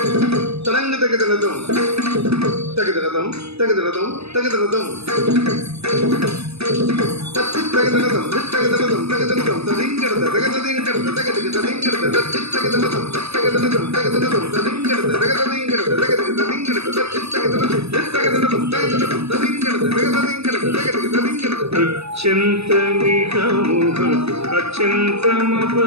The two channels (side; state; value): left; late; 0.79 ms